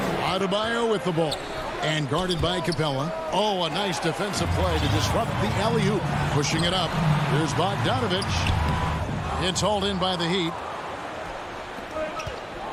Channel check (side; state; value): both; identical; correlation 1.00